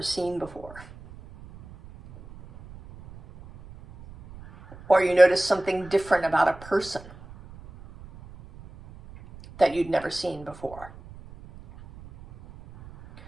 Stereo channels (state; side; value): noise; right; rumble, 19 dB below the sound